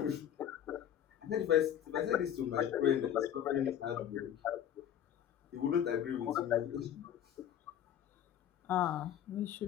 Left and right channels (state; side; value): quieter; right; 10.2 dB